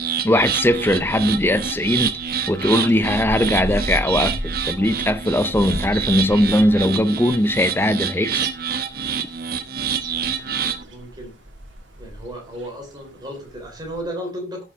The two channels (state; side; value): normal; both; correlation 0.64